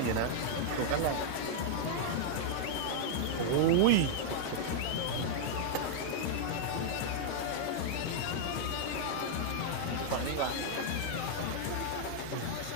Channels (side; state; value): both; different; correlation -0.01